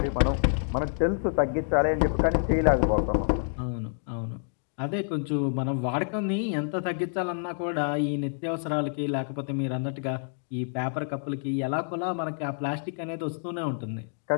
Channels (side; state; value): right; silent; digital silence